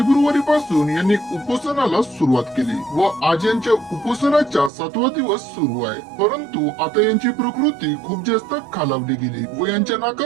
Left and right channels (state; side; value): drops out; left; at 4.7 s